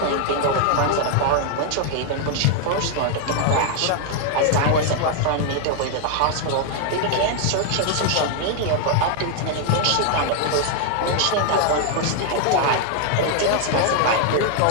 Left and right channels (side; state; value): both; different; correlation 0.00